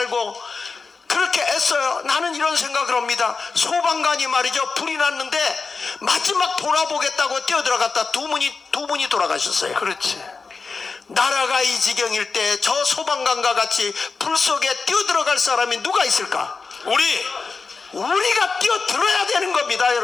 그렇게 애써요. 나는 이런 생각을 합니다. 소방관이 말이죠. 불이 났는데 마지막 돌아보겠다고 뛰어들어갔다 두 분이 돌아가셨어요. 그렇지. 나라가 이 지경일 때 저 소방관과 같이 불 속에 뛰어들어갈 사람이 누가 있을까? 우리가 뛰어들어야 되는 겁니다,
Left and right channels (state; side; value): quieter; right; 4.5 dB